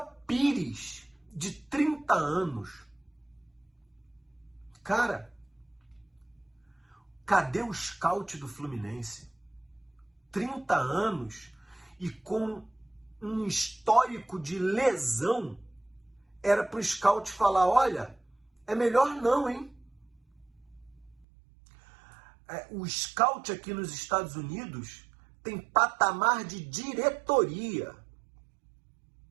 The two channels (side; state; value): left; drops out; at 21.2 s